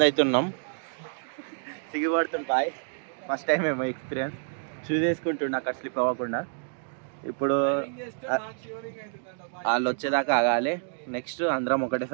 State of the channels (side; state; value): left; silent; digital silence